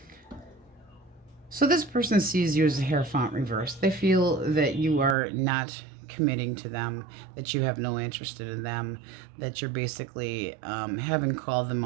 So this person sees you as a Hierophant reverse. They feel that you are not committing to them, that you have no interest in them, that you're basically having called them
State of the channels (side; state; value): left; drops out; at 5.2 s